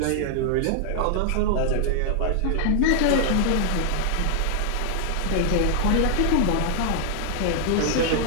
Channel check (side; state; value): both; different; correlation 0.00